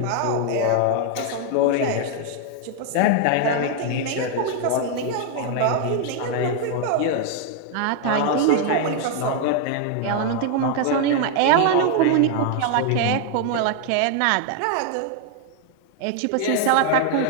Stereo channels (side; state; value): both; different; correlation 0.00